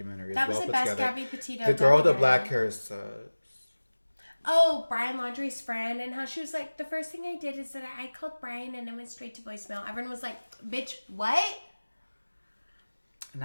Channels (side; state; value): both; inverted; correlation -1.00